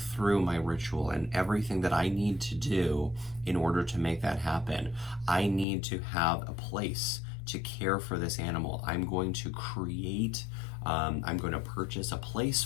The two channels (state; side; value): drops out; right; at 5.7 s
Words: through my ritual and everything that I need to do in order to make that happen. I need to have a place to care for this animal. I'm going to create, I'm going to purchase a place